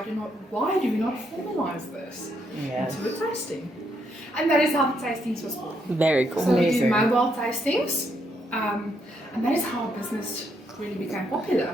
do we not formalize this into a tasting? And that is how the tastings was born. Very cool. So we do Amazing. mobile tastings, and that is how our business really became popular.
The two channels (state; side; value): normal; both; correlation 0.76